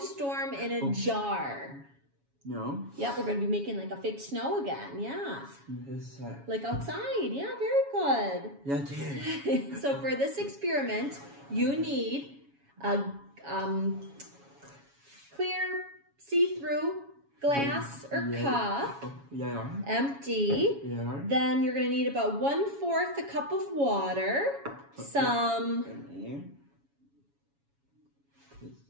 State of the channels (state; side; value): late; left; 7.2 ms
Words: in a Jar. No. Yep, we're going to be making like a fake snow again. Yeah. Like outside. Yeah, very good. Yeah, So for this experiment, you need a clear, see-through glass or cup, empty. Then you're going to need about 1/4 a cup of water, some,